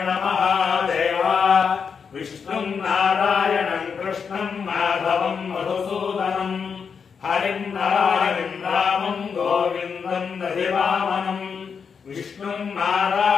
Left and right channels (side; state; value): right; quieter; 6.2 dB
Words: महादेव विष्णुं नारायणं कृष्णं माधवं मधुसूदनं हरिं नारायणं रामं गोविन्दं दधिवामनं विष्णुं